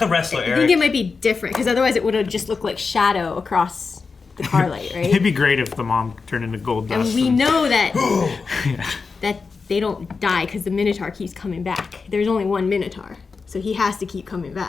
wrestler, I Eric. think it might be different because otherwise it would have just looked like shadow across the car light, It'd right? be great if the mom turned into gold And dust. we know that that they don't die because the Minotaur keeps coming back. There's only one Minotaur, so he has to keep coming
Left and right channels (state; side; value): quieter; right; 4.7 dB